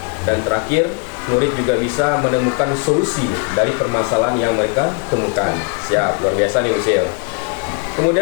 dan terakhir murid juga bisa menemukan solusi dari permasalahan yang mereka temukan. Siap, luar biasa nih Bu Sil.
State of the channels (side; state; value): right; quieter; 36.4 dB